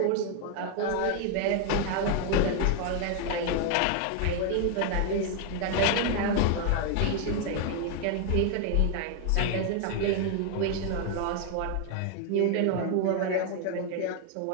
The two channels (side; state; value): both; different; correlation 0.01